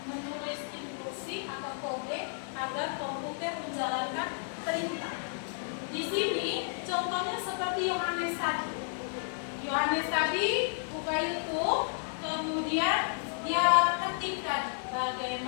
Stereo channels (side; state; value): right; silent; digital silence